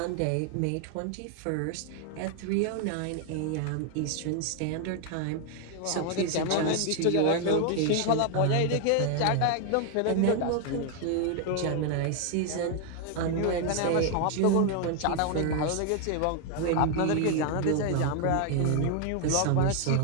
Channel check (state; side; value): different; both; correlation 0.00